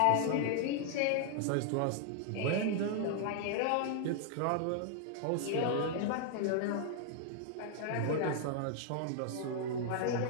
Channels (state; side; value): different; both; correlation 0.00